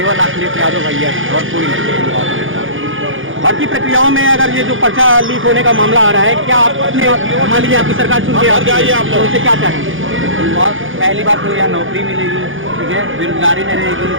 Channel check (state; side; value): late; left; 0.58 ms